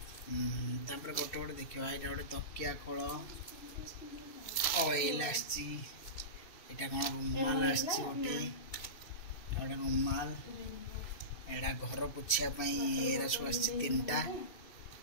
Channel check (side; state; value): right; late; 2.7 ms